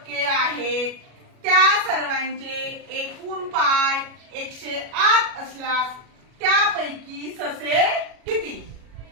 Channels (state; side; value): late; left; 37 ms